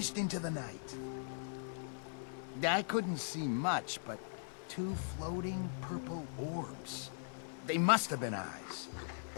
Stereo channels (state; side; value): silent; right; digital silence